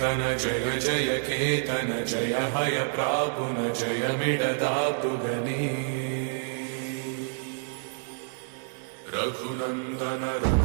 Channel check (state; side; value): silent; left; digital silence